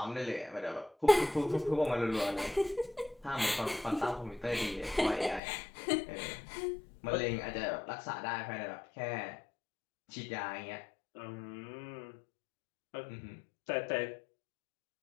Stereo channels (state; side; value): drops out; right; at 5.4 s